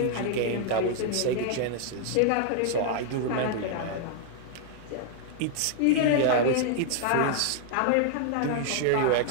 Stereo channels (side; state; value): both; different; correlation -0.01